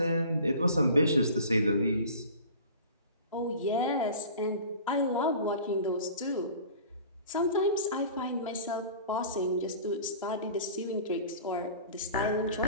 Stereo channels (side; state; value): both; inverted; correlation -0.42